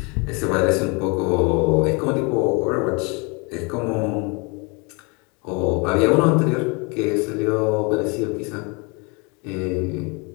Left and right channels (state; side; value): quieter; right; 30.8 dB